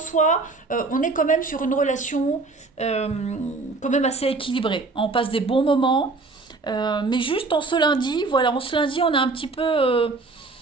on est quand même sur une relation quand même assez équilibrée. On passe des bons moments. Mais juste en ce lundi, voilà, en ce lundi, on est un petit peu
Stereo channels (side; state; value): left; quieter; 3.7 dB